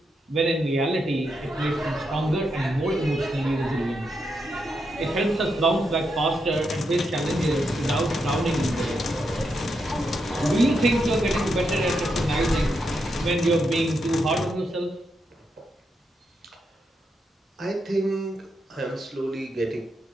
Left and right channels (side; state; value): both; normal; correlation 0.83